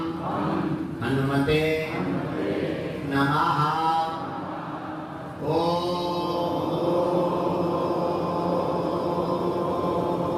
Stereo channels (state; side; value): identical; both; correlation 1.00